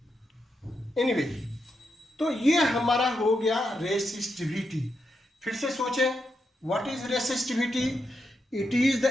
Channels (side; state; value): both; normal; correlation 0.84